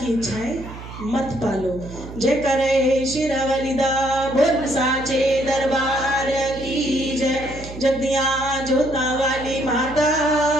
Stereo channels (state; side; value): noise; right; hum, 13 dB below the sound